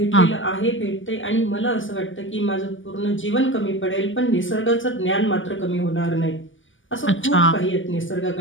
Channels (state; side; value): late; right; 0.57 ms